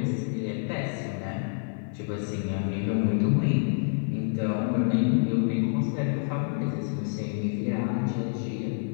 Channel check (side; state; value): right; silent; 57 dB below the other